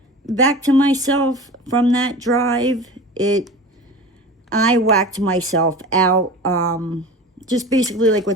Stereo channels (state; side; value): normal; both; correlation 0.35